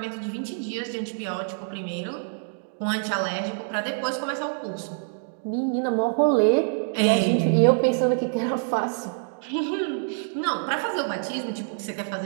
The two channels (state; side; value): silent; left; digital silence